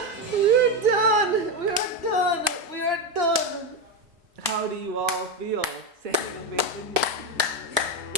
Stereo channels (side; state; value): both; normal; correlation 0.11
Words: We're done. We are done. We are done. How do you all feel? Standing ovation.